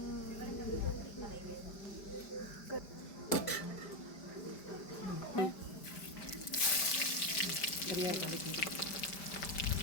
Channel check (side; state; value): right; late; 5.0 ms